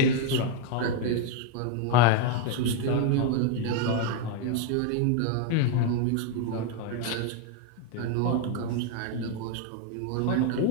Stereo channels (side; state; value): both; different; correlation 0.01